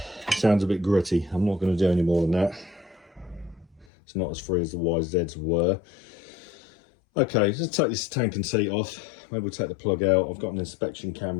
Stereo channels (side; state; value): right; drops out; at 3.9 s